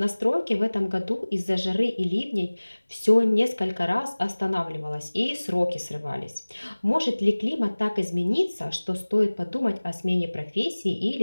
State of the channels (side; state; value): both; inverted; correlation -1.00